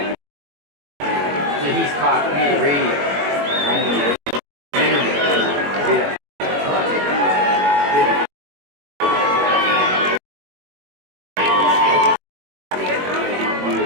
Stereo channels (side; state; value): left; late; 21 ms